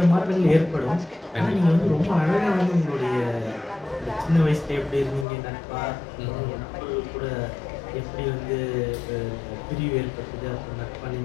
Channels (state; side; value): drops out; right; at 5.2 s